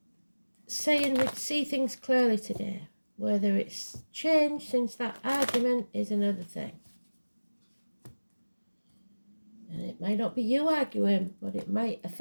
saying we'd see things clearly today. Whether it's changed since that argument is another thing. And it might not be you arguing, but it might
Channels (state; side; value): inverted; both; correlation -1.00